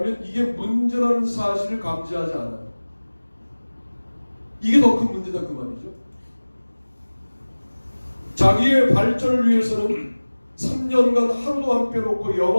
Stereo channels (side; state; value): both; inverted; correlation -1.00